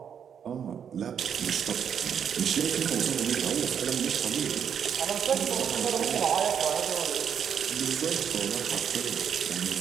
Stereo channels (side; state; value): left; quieter; 8.0 dB